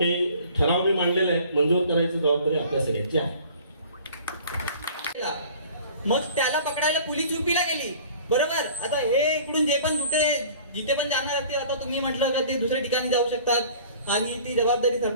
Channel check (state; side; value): inverted; both; correlation -0.48